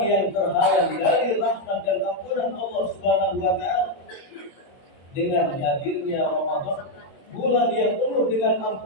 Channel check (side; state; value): right; late; 21 ms